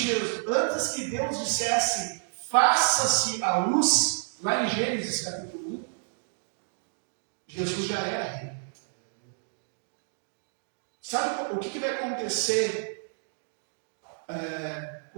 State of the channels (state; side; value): silent; left; digital silence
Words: que Deus dissesse, faça-se a luz, lá em Gênesis capítulo 1, Jesus já era rei. Sabe o que vai acontecer